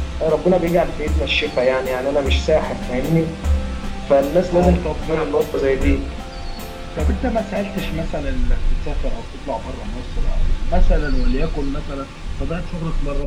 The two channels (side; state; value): both; identical; correlation 1.00